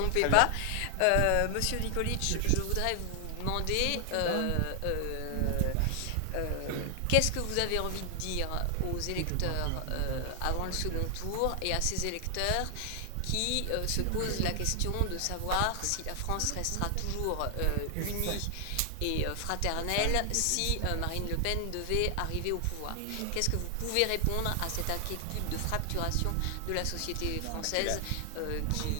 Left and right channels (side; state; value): both; different; correlation 0.00